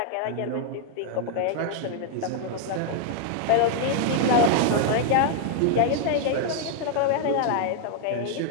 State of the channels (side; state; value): both; different; correlation 0.00